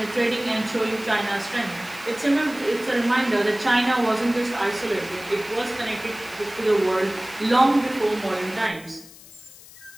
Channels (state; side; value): noise; left; hiss, 20 dB below the sound